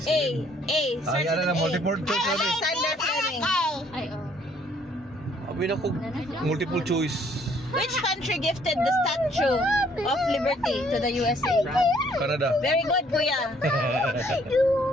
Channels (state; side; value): normal; both; correlation 0.63